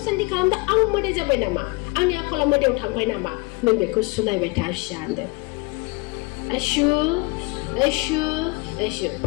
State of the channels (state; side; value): quieter; right; 26.5 dB